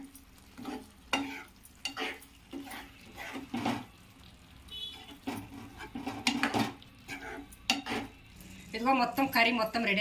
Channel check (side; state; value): both; identical; correlation 1.00